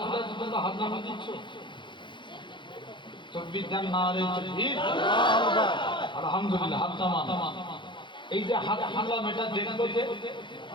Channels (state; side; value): late; right; 0.23 ms